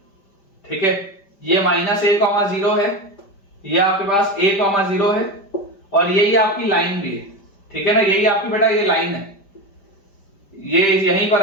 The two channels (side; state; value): right; late; 5.1 ms